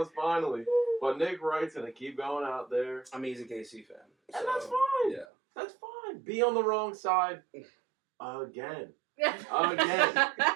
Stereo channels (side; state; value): left; drops out; at 5.2 s